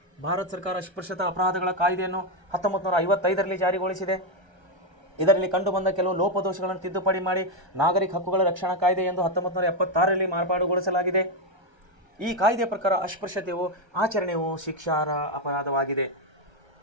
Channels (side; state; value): left; late; 1.3 ms